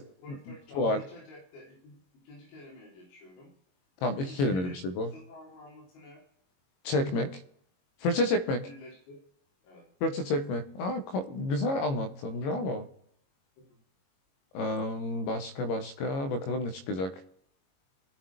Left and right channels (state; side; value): late; right; 22 ms